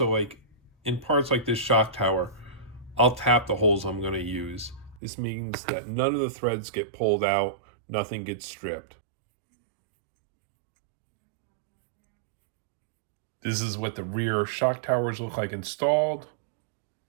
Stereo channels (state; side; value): drops out; left; at 5.0 s